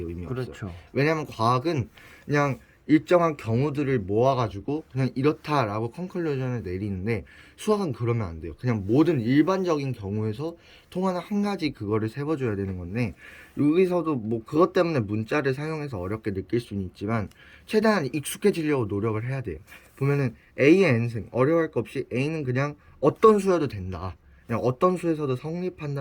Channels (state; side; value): identical; both; correlation 1.00